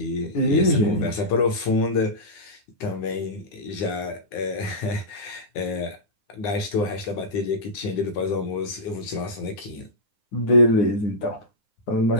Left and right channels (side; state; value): right; late; 9.7 ms